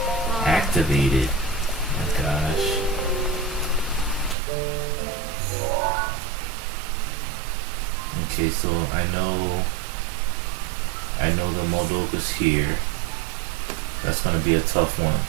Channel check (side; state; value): left; drops out; at 4.4 s